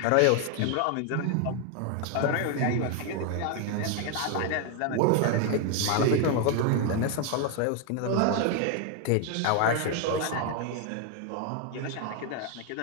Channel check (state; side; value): different; both; correlation 0.01